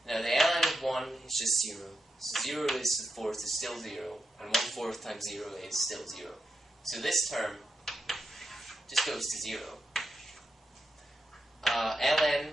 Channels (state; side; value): normal; both; correlation 0.85